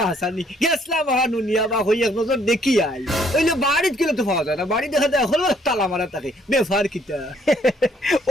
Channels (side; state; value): both; normal; correlation 0.66